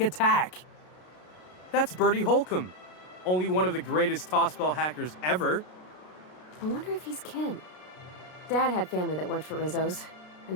That's Birdie Holcomb, only one of the greatest tossball hackers ever. I wonder if he's kin. Dad had family that worked for Rizzo's. I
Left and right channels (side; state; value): right; late; 33 ms